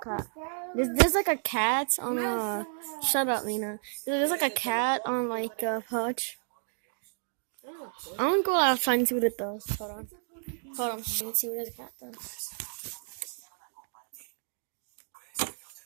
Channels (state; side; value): silent; left; digital silence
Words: cat. There's like a cat on a. Shut up, Lena. There's like a cat on like a pouch. I'm gonna go outside and see what it does. Hold on. Let me see what the cat does.